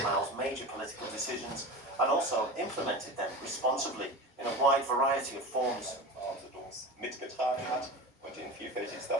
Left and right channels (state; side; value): normal; both; correlation 0.30